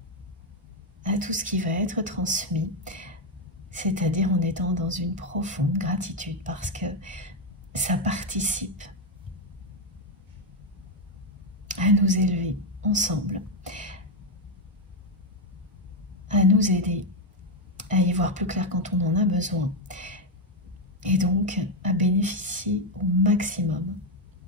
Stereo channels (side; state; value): both; normal; correlation 0.04